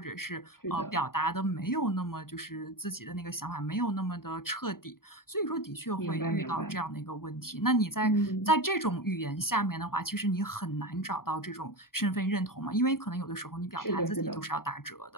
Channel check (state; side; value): late; right; 0.92 ms